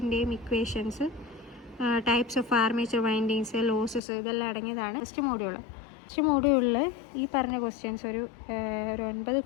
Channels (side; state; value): right; drops out; at 4.0 s